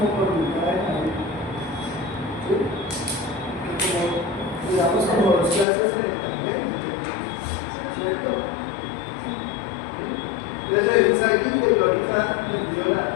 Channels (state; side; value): drops out; right; at 5.7 s